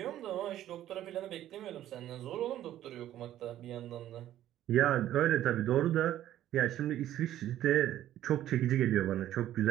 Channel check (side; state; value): left; quieter; 12.6 dB